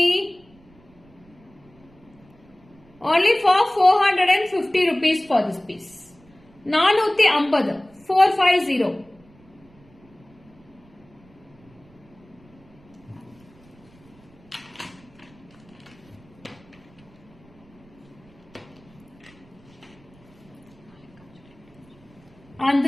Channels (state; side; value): noise; right; rumble, 27 dB below the sound